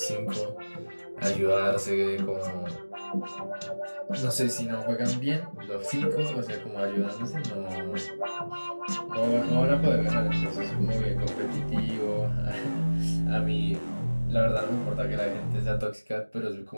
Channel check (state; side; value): inverted; both; correlation -1.00